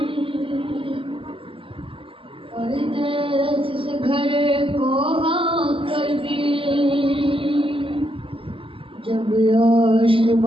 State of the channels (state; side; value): late; left; 0.26 ms